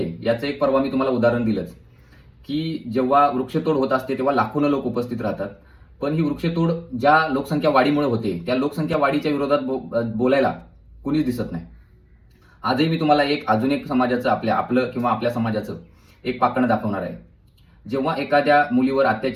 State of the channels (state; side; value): identical; both; correlation 1.00